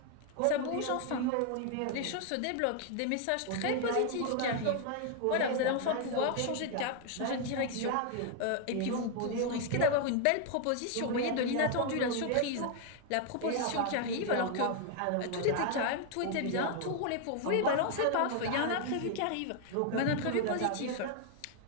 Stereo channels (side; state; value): both; different; correlation 0.00